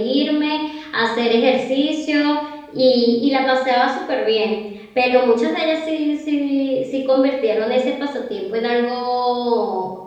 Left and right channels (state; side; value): identical; both; correlation 1.00